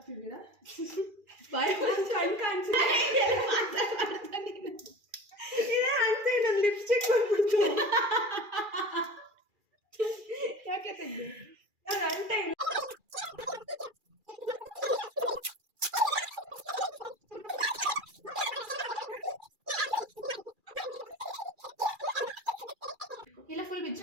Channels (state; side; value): late; left; 2.4 ms